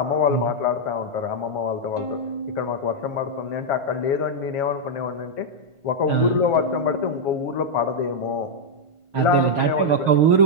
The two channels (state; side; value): late; left; 1.4 ms